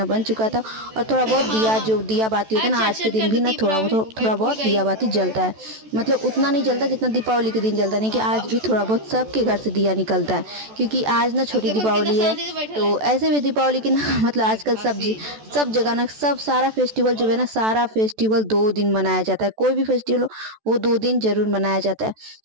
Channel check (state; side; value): late; left; 14 ms